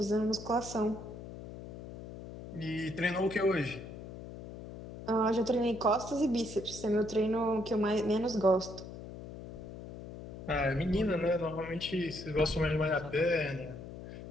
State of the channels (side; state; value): left; noise; hum, 12 dB below the sound